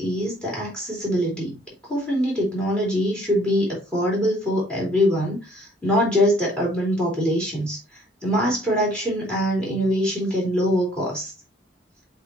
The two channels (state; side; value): normal; both; correlation 0.60